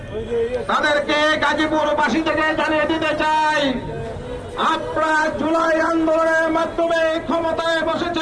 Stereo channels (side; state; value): both; identical; correlation 1.00